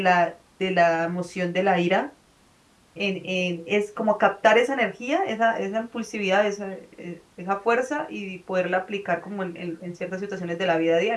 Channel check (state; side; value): identical; both; correlation 1.00